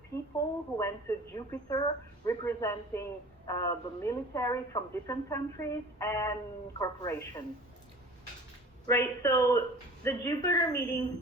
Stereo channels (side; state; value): both; normal; correlation 0.43